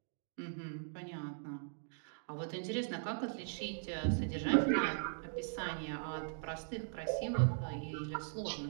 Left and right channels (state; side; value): silent; left; digital silence